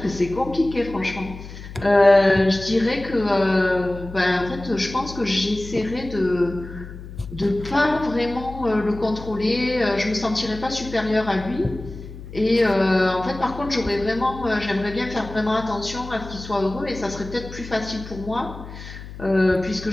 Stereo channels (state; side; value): noise; left; hum, 13 dB below the sound